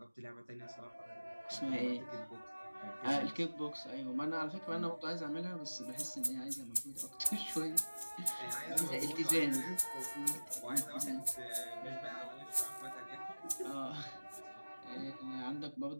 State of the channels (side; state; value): both; inverted; correlation -1.00